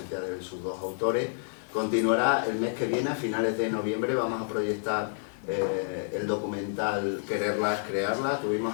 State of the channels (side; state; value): right; silent; digital silence